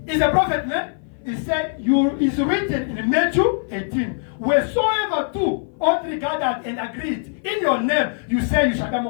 He's a prophet, man. He said, it's written in Matthew 18, wheresoever two or three gathered and agreed in your name, you say you shall be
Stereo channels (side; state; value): right; silent; 56 dB below the other